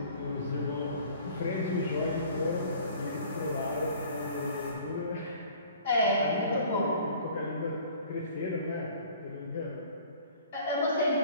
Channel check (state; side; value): inverted; both; correlation -0.49